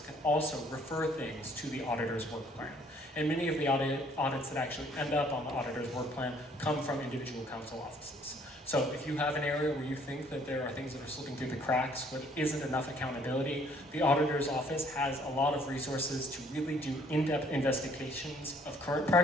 can also refer things to the auditor's work plan. And many of the audits that actually end up on the auditor's work plan come from individual council offices. So if you have an area where you think that there are things that are slipping through the cracks, where there isn't enough accountability, the auditor's office has a lot of resources to really do in-depth investigations of current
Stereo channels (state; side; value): normal; both; correlation 0.61